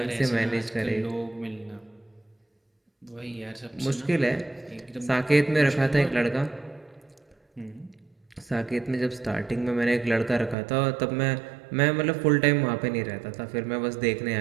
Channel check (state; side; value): drops out; left; at 10.6 s